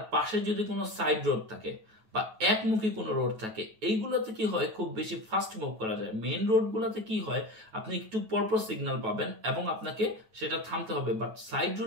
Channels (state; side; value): late; left; 9.2 ms